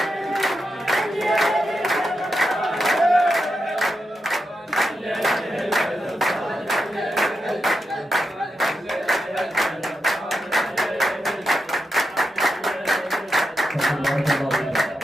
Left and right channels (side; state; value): both; normal; correlation 0.87